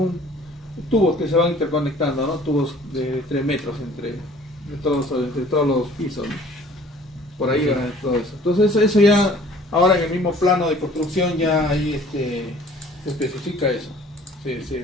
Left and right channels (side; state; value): both; normal; correlation 0.52